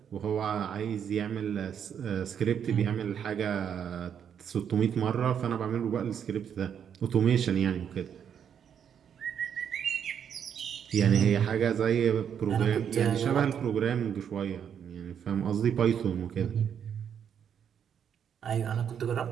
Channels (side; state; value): left; quieter; 8.3 dB